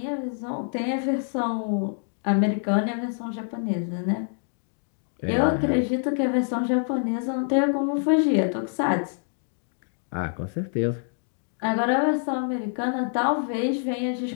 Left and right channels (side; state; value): right; silent; digital silence